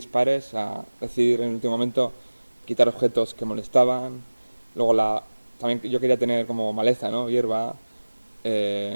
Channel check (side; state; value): both; inverted; correlation -1.00